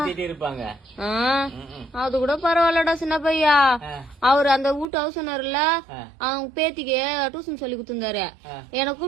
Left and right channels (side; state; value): left; drops out; at 4.9 s